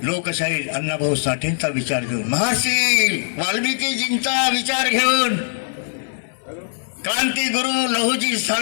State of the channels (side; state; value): right; silent; 63 dB below the other